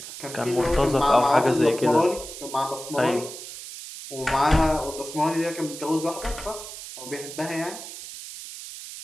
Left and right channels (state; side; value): noise; right; hiss, 11 dB below the sound